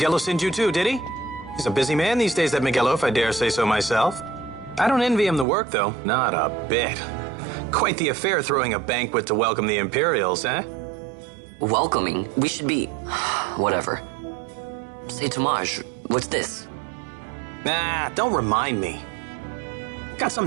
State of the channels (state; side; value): drops out; left; at 5.5 s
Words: sent you too, did he? He's a busy man these days, that Miguelo, if I dare say so myself. I don't envy him the work, though. Not a bit. Quite the affair throwing a banquet to welcome the Imperials, eh? Welcoming? We should be... whatever. Say, Tomaj, what's this? Nah, don't remind me. Got